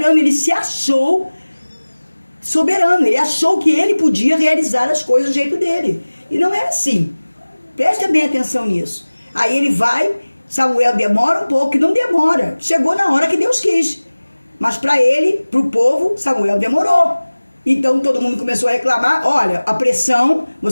ele se achou soberano, ele achou que ele podia realizar as coisas do jeito dele. E não é assim. Preste bem atenção nisso. Aí ele vai... Samuel demora um pouco, não demora. Chegou na hora que Deus quis. Mas para ele, para o povo, Samuel demorou. Então todo mundo começou a reclamar. Olha, a pressão,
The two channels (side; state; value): both; inverted; correlation -1.00